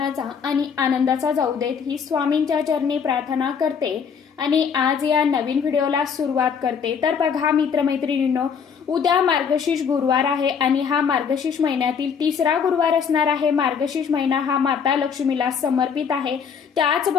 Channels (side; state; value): right; quieter; 6.7 dB